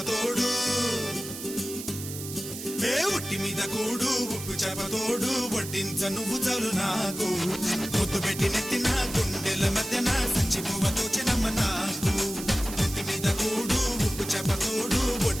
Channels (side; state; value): right; noise; hiss, 10 dB below the sound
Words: ఏ ఒట్టి మీద కూడు ఉప్పు చేపతోడు వడ్డించ నువ్వు చాలు నాకు ముద్దు పెట్టి నెత్తిన గుండెల మధ్యన సంచి పువ్వతో చిన్నమ్మ నాకు ఒట్టి మీద కూడు ఉప్పు చేపతోడు